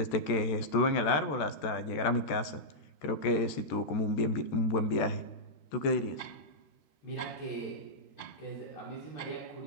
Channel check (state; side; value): late; right; 14 ms